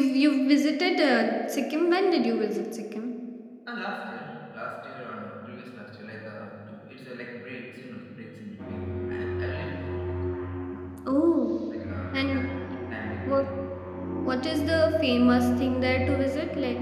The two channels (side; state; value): both; identical; correlation 1.00